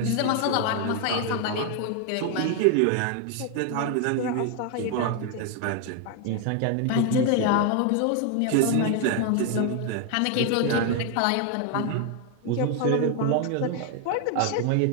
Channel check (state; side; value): different; both; correlation 0.01